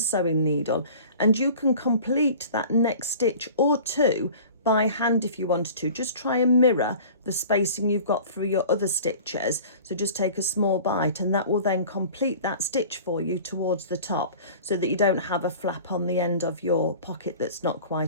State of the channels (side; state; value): both; inverted; correlation -0.42